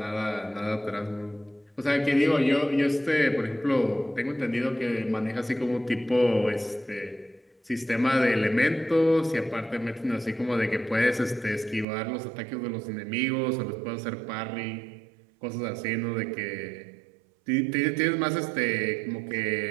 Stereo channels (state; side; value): drops out; left; at 11.9 s